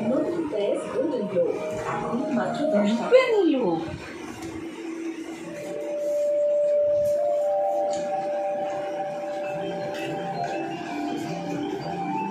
নতুন প্রেস গোল্ডেন গ্লো এখন মাত্র 10 টাকা নিল।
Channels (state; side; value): identical; both; correlation 1.00